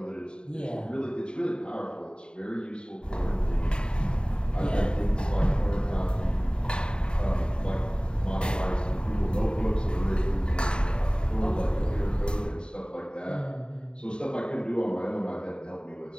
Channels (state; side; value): late; right; 0.051 ms